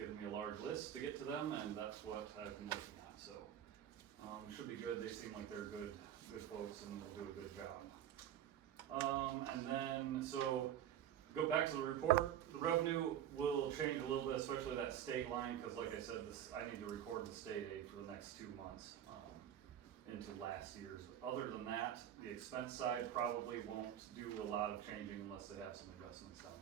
me a large list to get to them, and that's what I've been looking at, so. Should be good, they seem like they're good folks and will do a good job. And then, so, go back to the report, the revenue will change a little bit, especially that state line, because like I said, I need to record the state aid for the next 2 months into last year's. Other than that, the expense side probably won't do a lot of changing unless they have some adjustments down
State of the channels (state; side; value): quieter; left; 10.6 dB